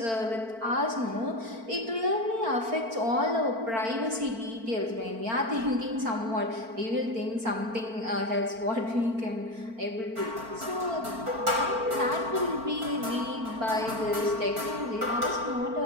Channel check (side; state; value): left; late; 4.4 ms